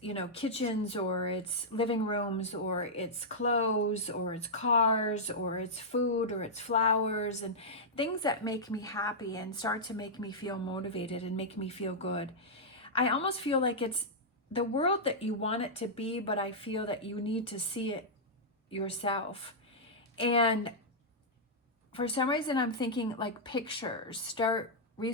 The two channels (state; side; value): normal; both; correlation -0.09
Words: kitchens, or it's living rooms, or it's clothes, or it's cars, or it's food, or it's flowers, and things that make me happy and start to make me feel motivated and make me feel good. I almost feel like it's the world that you want it to be, but I feel that you need to see it yourself. And for some reason, I'm thinking like pictures. Start